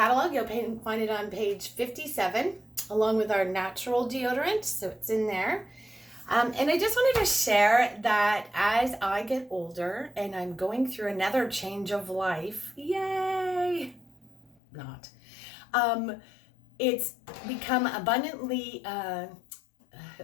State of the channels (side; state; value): right; drops out; at 14.6 s